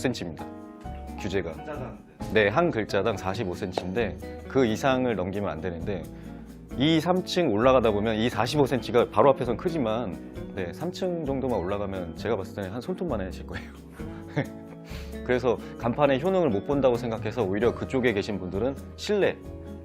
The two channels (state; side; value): identical; both; correlation 1.00